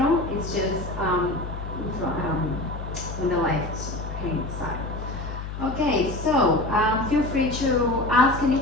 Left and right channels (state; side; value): noise; left; hum, 7 dB below the sound